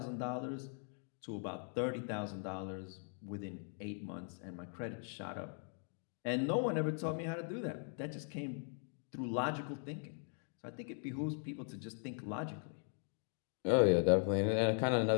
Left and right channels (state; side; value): silent; right; 51 dB below the other